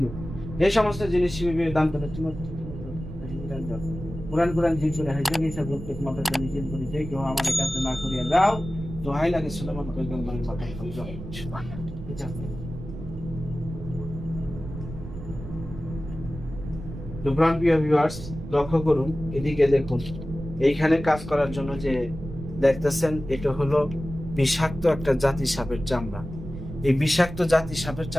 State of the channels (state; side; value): noise; right; rumble, 10 dB below the sound